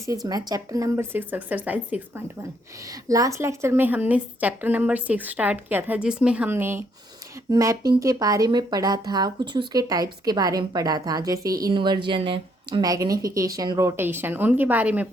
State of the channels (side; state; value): both; normal; correlation 0.71